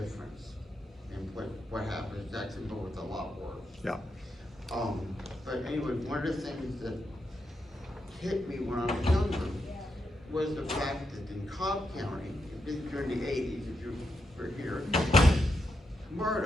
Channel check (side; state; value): both; normal; correlation 0.83